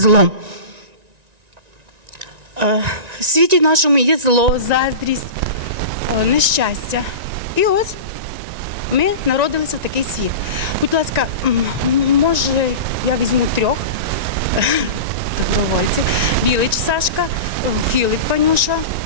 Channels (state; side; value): late; left; 1.9 ms